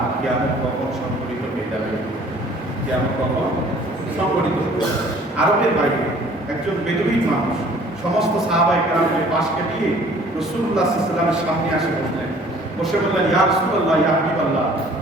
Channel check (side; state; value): both; normal; correlation 0.53